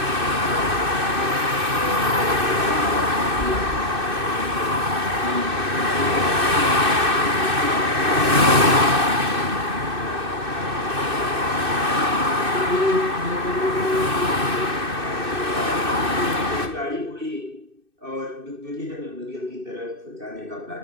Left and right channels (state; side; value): late; left; 2.6 ms